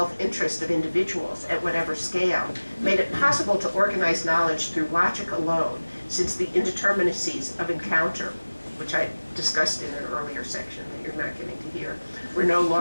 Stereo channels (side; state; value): both; inverted; correlation -1.00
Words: of individuals at whatever scale made it possible to organize knowledge through logic alone, since the indeterminacies of encounter, which I discussed in an earlier section that you're not getting to hear, were no